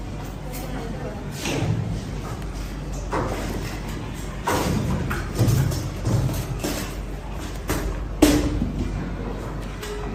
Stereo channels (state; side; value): identical; both; correlation 1.00